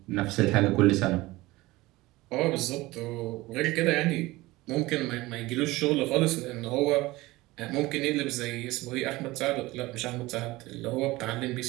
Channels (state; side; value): quieter; left; 19.7 dB